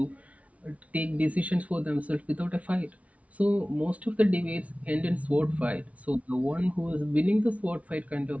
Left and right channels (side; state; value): left; late; 0.066 ms